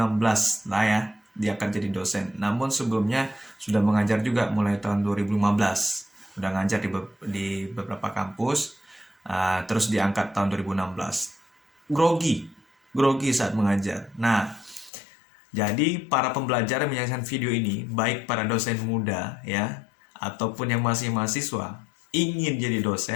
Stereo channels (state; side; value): drops out; right; at 14.9 s